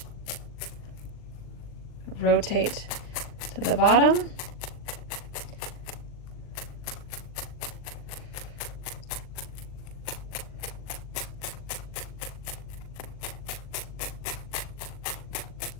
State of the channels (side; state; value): right; late; 39 ms